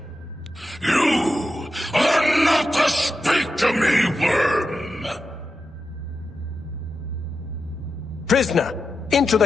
You are not to speak to me, worm! Prisoner, into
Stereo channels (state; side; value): normal; both; correlation 0.89